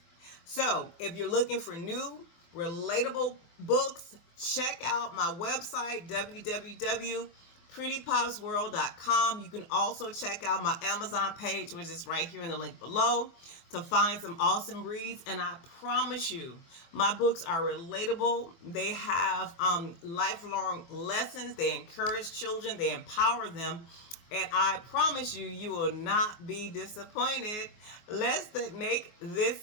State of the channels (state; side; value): late; right; 24 ms